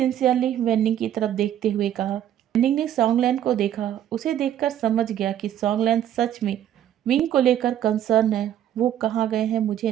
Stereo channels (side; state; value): left; quieter; 10.9 dB